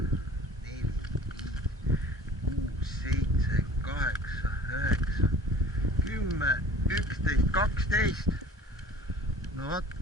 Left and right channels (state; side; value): normal; both; correlation 0.45